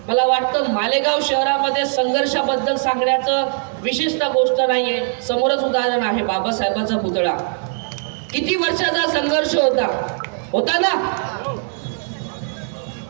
मला वाटतं मालेगाव शहरामध्ये संघर्षाबद्दल सांगण्याचं विशेषतः गोष्ट नाहीये. समोरच उदाहरण आहे बाबासाहेबांचा पुतळा. किती वर्षाचा संघर्ष होता ना?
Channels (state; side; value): silent; left; 66 dB below the other